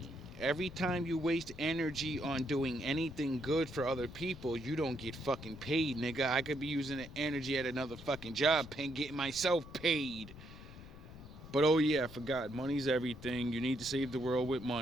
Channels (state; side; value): noise; left; rumble, 15 dB below the sound